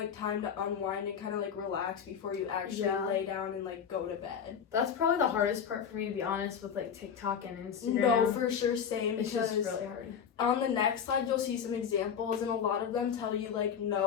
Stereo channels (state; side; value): quieter; right; 7.5 dB